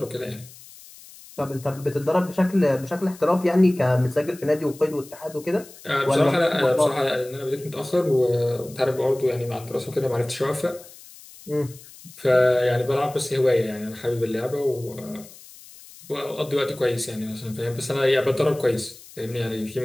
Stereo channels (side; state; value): left; noise; hiss, 20 dB below the sound